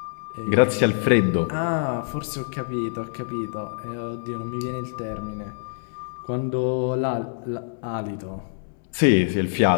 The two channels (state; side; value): silent; right; 61 dB below the other